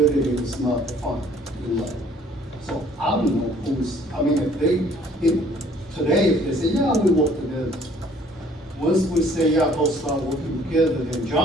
is not defined in law. So I don't know who's, I mean, today, if they say, yeah, we work together. Once we say, yeah, both start working together, then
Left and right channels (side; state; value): both; normal; correlation 0.58